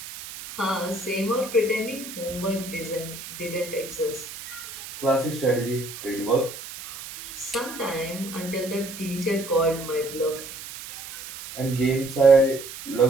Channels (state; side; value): noise; right; hiss, 12 dB below the sound